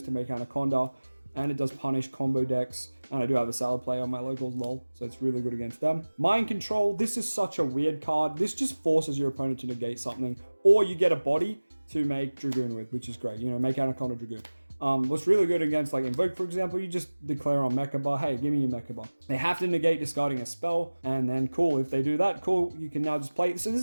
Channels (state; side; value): inverted; both; correlation -1.00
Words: to make Anaconda, and it does punish combo decks, and I do have a Salad Play on my locals, lol, so it's really good against them. Mind Control, this is such a weird card. This just forces your opponent to negate something, or you get a body to make Dragoon with, which is great. You know, make Anaconda Dragoon. What's really good against like Invoke, for example, you just declare on Mechaba, hey, give me your Mechaba. They have to negate discarding a spell, and then cool, if they do that, cool, you can now just play. So this